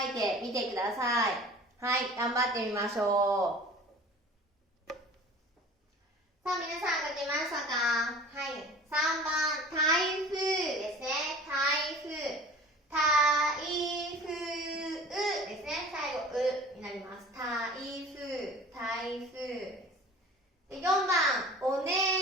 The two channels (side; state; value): both; normal; correlation 0.43